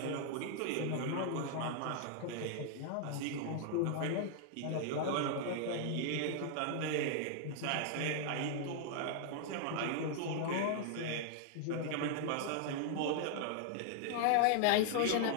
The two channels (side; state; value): both; different; correlation -0.01